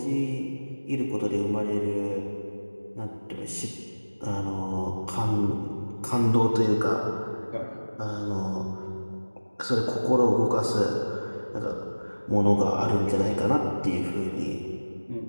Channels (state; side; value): inverted; both; correlation -1.00